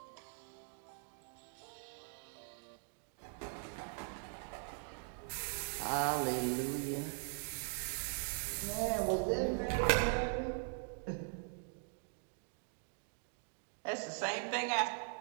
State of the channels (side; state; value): left; silent; 50 dB below the other